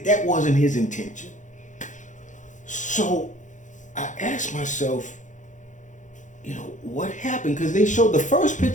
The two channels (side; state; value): right; late; 0.36 ms